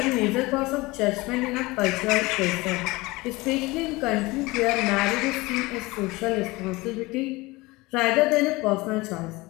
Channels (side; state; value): right; quieter; 22.0 dB